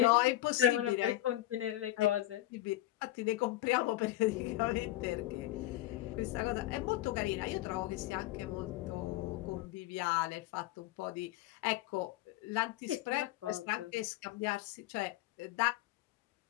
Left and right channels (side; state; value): right; quieter; 15.5 dB